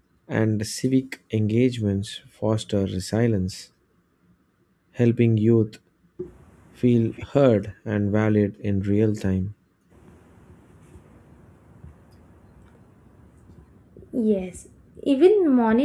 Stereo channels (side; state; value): both; identical; correlation 1.00